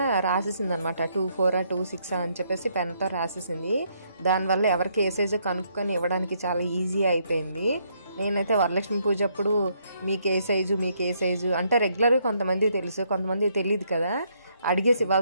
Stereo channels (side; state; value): both; inverted; correlation -0.72